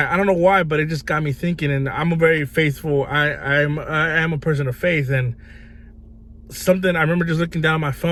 don't know why, but it just got me thinking. And I'm a very faithful, I am a person of faith. And I remember just looking down my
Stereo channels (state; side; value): identical; both; correlation 1.00